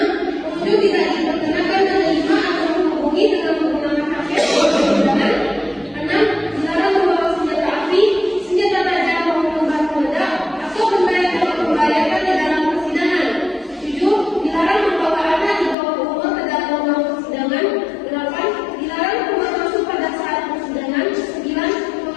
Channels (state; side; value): drops out; right; at 15.8 s